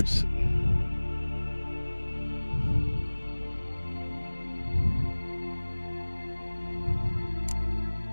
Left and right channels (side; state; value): both; inverted; correlation -1.00